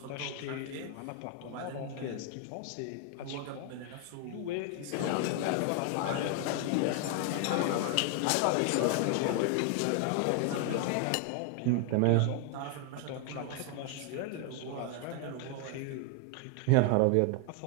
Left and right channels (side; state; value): both; different; correlation 0.00